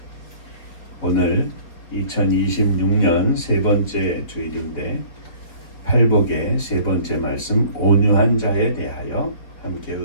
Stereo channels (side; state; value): right; late; 4.1 ms